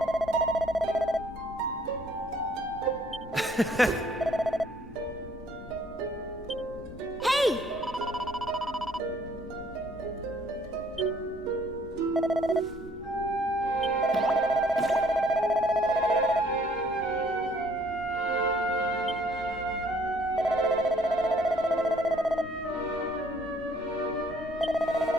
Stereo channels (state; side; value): normal; both; correlation 0.61